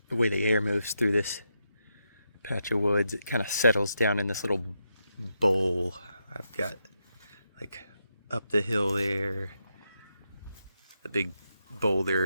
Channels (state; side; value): inverted; both; correlation -0.83